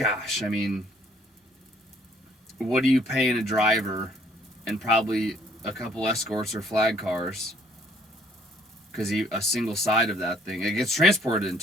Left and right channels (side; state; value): both; normal; correlation 0.62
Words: I mean, what are you paying a driver and probably a couple escorts or flag cars? Because a single side of that thing, it gets transported in